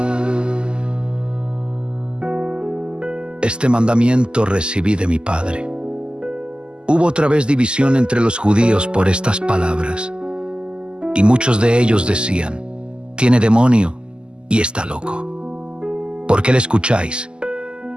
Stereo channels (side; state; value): left; late; 0.048 ms